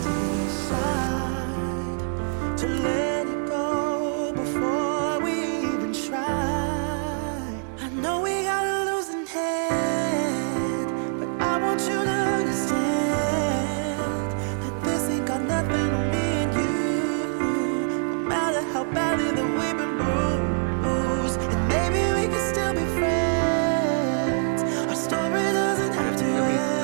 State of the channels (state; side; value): silent; left; 62 dB below the other